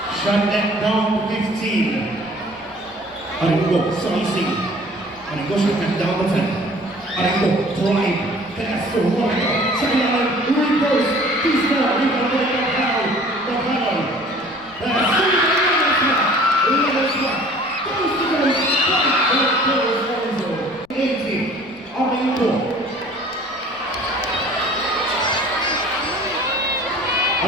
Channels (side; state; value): left; noise; rumble, 28 dB below the sound